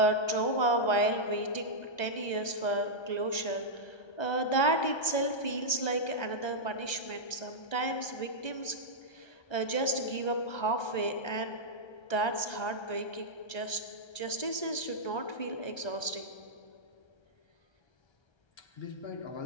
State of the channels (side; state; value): right; late; 1.3 ms